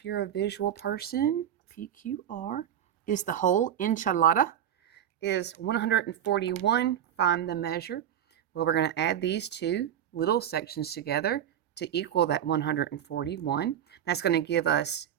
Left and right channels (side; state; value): left; quieter; 10.1 dB